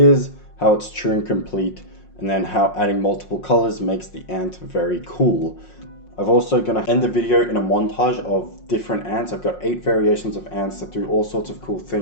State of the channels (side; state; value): right; late; 5.5 ms